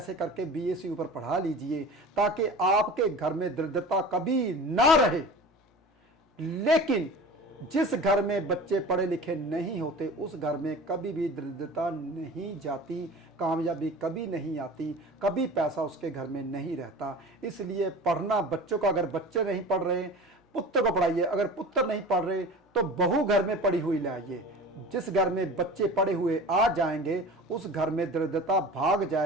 करके बीए से ऊपर पढ़ा लीजिए ताकि आपके घर में दरिद्रता कभी ना रहे। लेकिन जिस घर में बच्चे पढ़े लिखे नहीं होते उस घर में कभी भी दरिद्रता नहीं जाती, कामयाबी कभी नहीं आती, कभी पैसा उसके घर में नहीं रहता। इसलिए पढ़ना बच्चों का, अगर बच्चे नहीं पढ़ रहे पुत्र को पढ़ाइए, अगर पुत्र नहीं पढ़ रहे तो बहू घर में पढ़ी हुई लाइए। जिस घर में बच्चे पढ़े हुए आ जाएंगे उस घर में दरिद्रता भाग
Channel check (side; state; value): both; normal; correlation 0.37